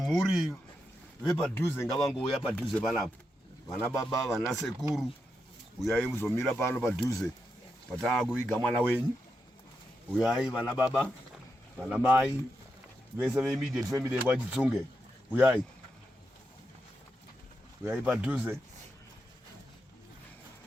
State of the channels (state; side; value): normal; both; correlation 0.85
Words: vepadhuze ngavangouya padhuze panapo. Vana baba, vana sekuru, uyai muzomira pano padhuze. Patava kuviga mwana wenyu. Uyai vana baba, vana mai, vese ve-immediate family yekwachitsunge. Uyai. Uyai padhuze.